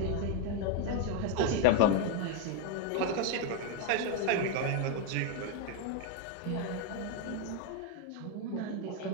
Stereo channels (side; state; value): both; different; correlation 0.01